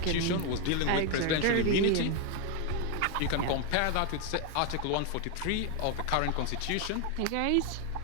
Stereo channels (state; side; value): different; both; correlation 0.01